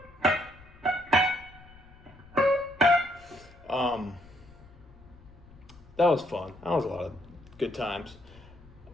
that was fun. That was a lot of good times.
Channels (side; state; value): left; noise; rumble, 22 dB below the sound